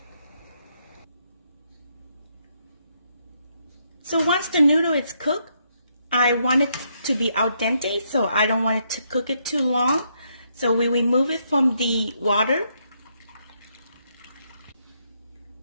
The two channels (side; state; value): both; inverted; correlation -0.76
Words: So once the noodle is cooked, I want it to be al dente, so I don't want it to cook it too long. So we remove it from the water.